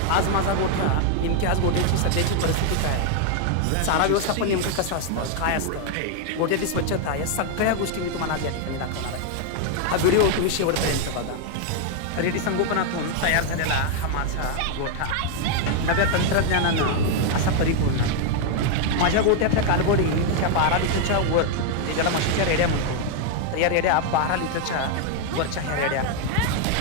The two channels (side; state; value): both; different; correlation 0.00